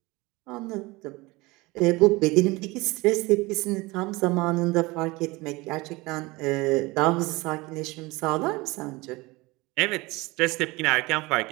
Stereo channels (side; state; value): left; quieter; 22.8 dB